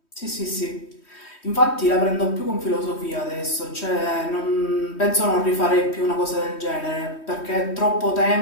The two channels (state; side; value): late; right; 3.1 ms